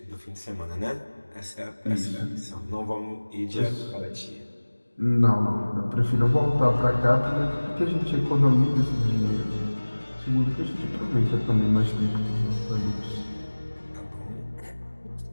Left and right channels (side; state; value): both; inverted; correlation -1.00